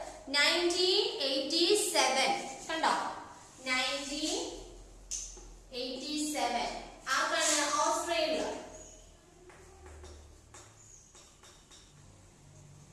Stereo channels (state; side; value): identical; both; correlation 1.00